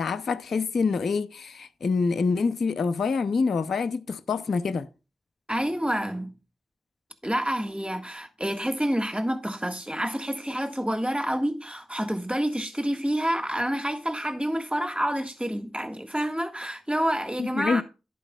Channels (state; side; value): normal; both; correlation 0.92